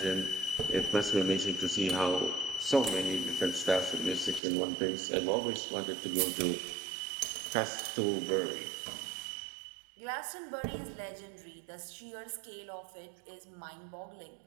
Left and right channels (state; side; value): drops out; left; at 4.4 s